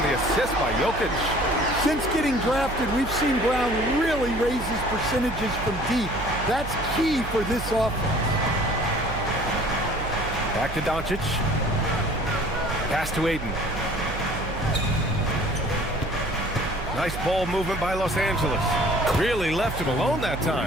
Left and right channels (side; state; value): right; noise; hum, 8 dB below the sound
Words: the assist by Jokic. Since getting drafted, we've seen Brown really raise his percentages from deep. That's key for this offense. Back to Doncic. Pass to Ayton. Nice ball movement by Los Angeles. Really left him alone that